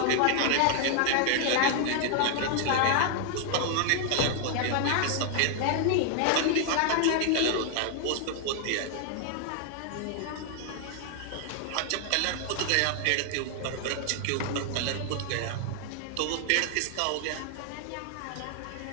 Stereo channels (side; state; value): both; different; correlation 0.00